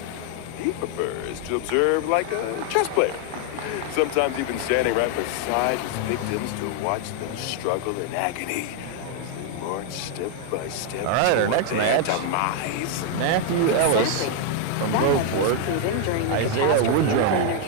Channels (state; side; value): different; both; correlation 0.00